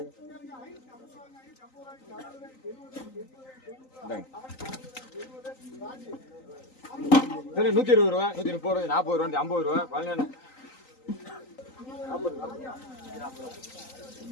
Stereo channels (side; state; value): right; late; 3.9 ms